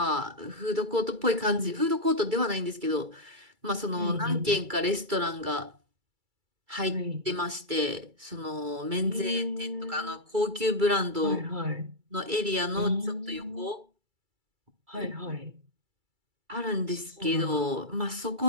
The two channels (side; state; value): left; late; 2.3 ms